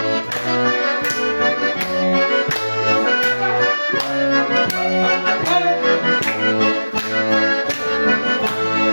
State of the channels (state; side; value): inverted; both; correlation -1.00